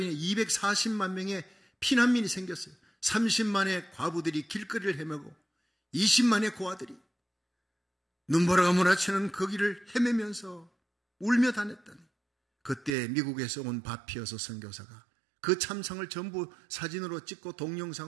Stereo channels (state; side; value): drops out; left; at 12.9 s